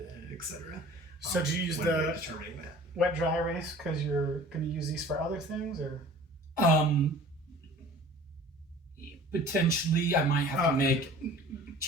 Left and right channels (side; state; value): both; normal; correlation 0.46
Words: etc. So do you use when we're the determining that? wet dry erase because you're going to use these for other things, or? Potentially, I might have to make